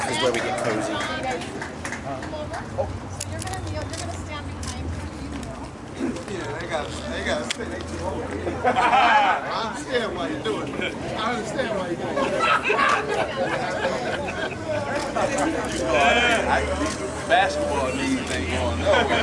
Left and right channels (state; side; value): identical; both; correlation 1.00